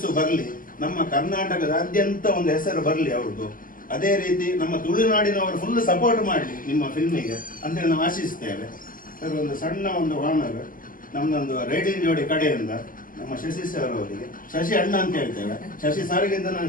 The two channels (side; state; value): right; late; 0.40 ms